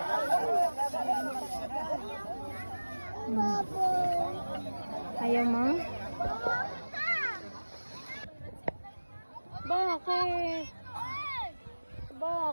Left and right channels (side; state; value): both; inverted; correlation -1.00